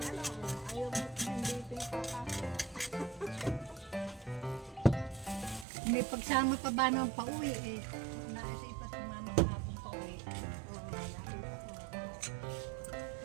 mo, hindi ito yung papasok. May pagsama pa ba ng pauwi eh? Naisa pa sumama kahapon pauwi.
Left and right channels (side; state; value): left; drops out; at 5.7 s